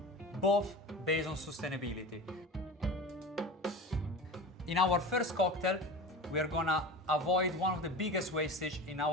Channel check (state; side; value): normal; both; correlation 0.32